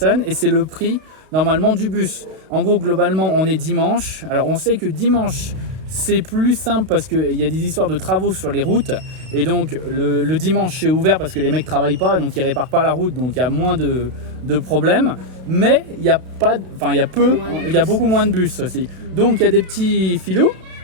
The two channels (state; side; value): late; left; 32 ms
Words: et c'est le prix normalement du bus. En gros, globalement, on est dimanche. Alors on sait que dimanche c'est plus simple parce qu'il y a des histoires de travaux sur les routes, et donc le dimanche c'est ouvert parce que les mecs travaillent pas, donc ils réparent pas la route, donc il y a moins de problèmes, mais il y a beaucoup moins de bus aussi. Donc il y a des petits filous,